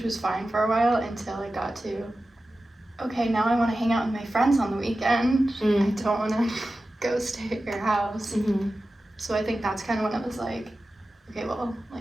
was fine for a while until it got to, okay, now I want to hang out with my friends on the weekend. I don't want to go stay at your house. Mm-hmm. So I think that's kind of when it was like, okay, well,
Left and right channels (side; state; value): both; normal; correlation 0.94